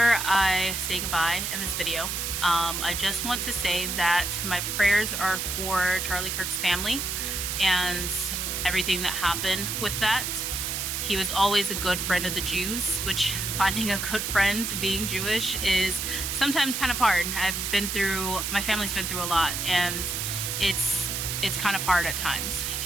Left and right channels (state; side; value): noise; right; hiss, 2 dB below the sound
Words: I say goodbye in this video, I just want to say that my prayers are for Charlie Kirk's family and everything that happened with that. He was always a good friend of the Jews, which finding a good friend being Jewish is sometimes kind of hard. My family's been through a lot, and it's kind of hard at times.